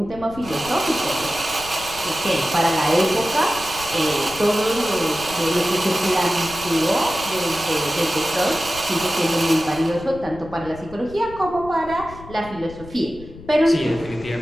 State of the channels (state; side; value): noise; left; rumble, 16 dB below the sound